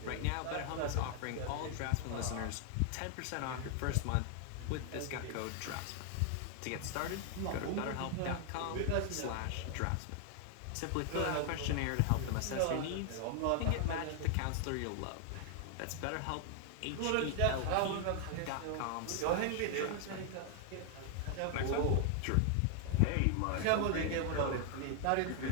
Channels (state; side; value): different; both; correlation 0.00